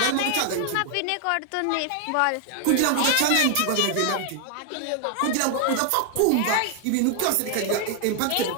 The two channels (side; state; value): both; different; correlation 0.00